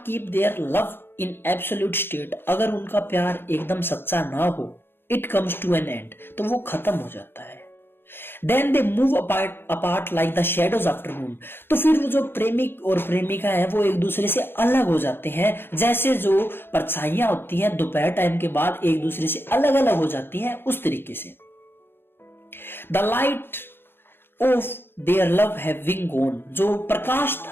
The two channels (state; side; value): late; right; 0.10 ms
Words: keep their love in absolute state, अगर उनका प्यार एकदम सच्चा ना हो, it comes to an end, तो वो खत्म हो जाता है। Then they move apart like the shadows after noon. तो फिर वो जो प्रेमिक और प्रेमिका है वो एक दूसरे से अलग हो जाते हैं, जैसे जो परछाइयां होती हैं दोपहर टाइम के बाद एक दूसरे से अलग अलग हो जाती हैं, उस तरीके से। The light of their love having gone, जो प्रकाश